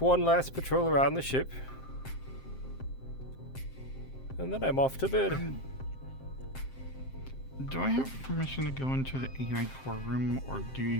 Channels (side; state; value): right; late; 7.6 ms